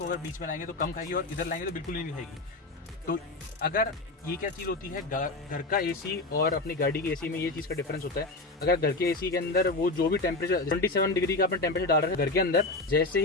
अगर बीच में लाएंगे तो कम खाएगी, और इधर लाएंगे तो बिल्कुल ही नहीं खाएगी। तो अगर ये क्या चीज़ होती है, घर का एसी और अपनी गाड़ी की एसी में ये चीज़ का डिफरेंस होता है। अगर घर के एसी के अंदर वो जो भी टेम्परेचर 27 डिग्री का अपने टेम्परेचर डाल रहे हैं घर के अंदर, जैसे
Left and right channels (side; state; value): right; quieter; 3.1 dB